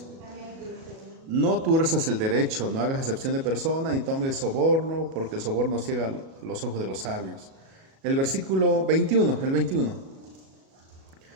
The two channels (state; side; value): late; left; 37 ms